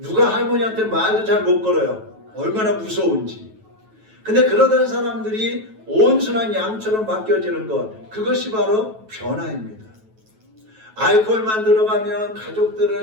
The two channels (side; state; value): left; late; 9.2 ms